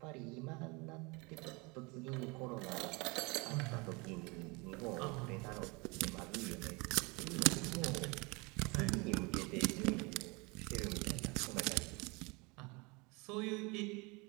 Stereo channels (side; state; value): left; quieter; 27.5 dB